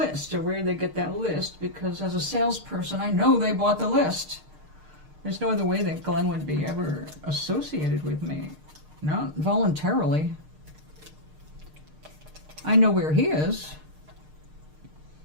or where they get that list, because as a salesperson, I know they bought the list. There's no other way that Glenn would be ever associated with me. Not voluntarily. I know where he is,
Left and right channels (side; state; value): left; late; 6.6 ms